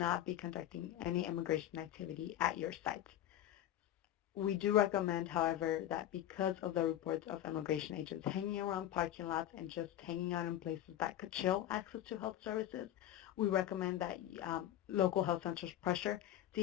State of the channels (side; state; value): right; quieter; 12.4 dB